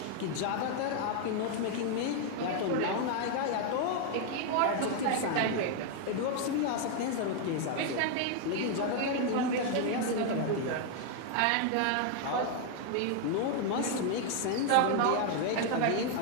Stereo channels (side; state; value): both; different; correlation 0.00